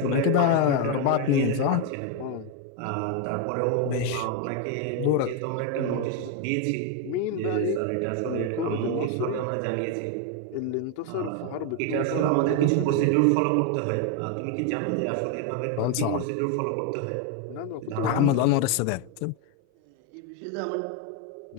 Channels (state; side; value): different; both; correlation 0.01